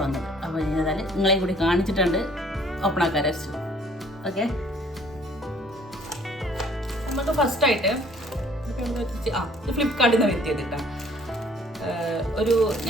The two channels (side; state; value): both; normal; correlation 0.58